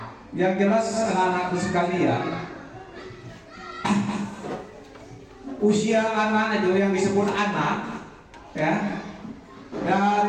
Yang jelas anak-anakku sekalian, usia anak itu yang disebut anak ya,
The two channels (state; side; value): identical; both; correlation 1.00